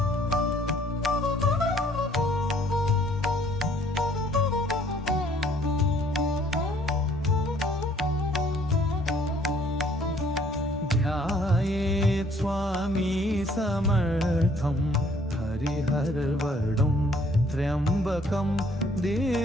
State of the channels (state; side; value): normal; both; correlation 0.61